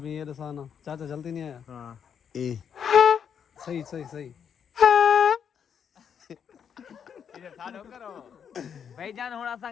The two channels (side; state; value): right; quieter; 7.7 dB